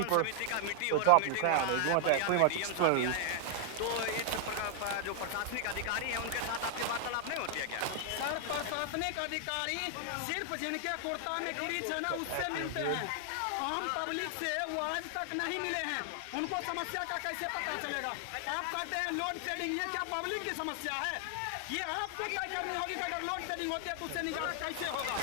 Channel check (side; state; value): both; different; correlation 0.00